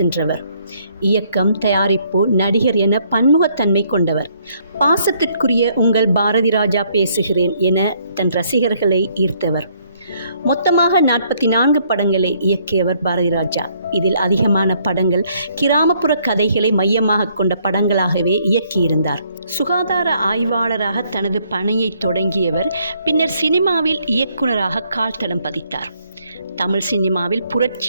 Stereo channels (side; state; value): both; inverted; correlation -0.68